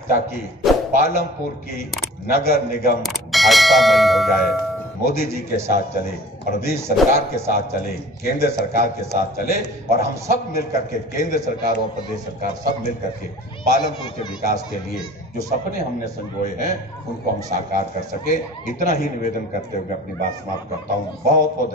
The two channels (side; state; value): both; normal; correlation 0.45